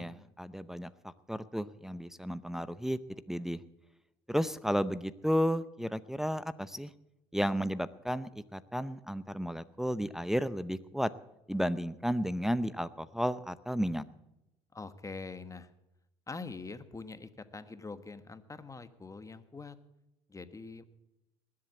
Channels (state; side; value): normal; both; correlation 0.96